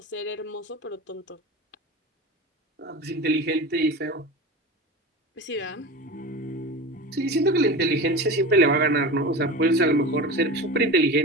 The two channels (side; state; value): both; normal; correlation 0.29